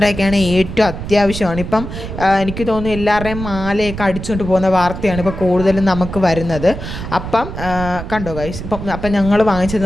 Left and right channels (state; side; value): noise; right; rumble, 8 dB below the sound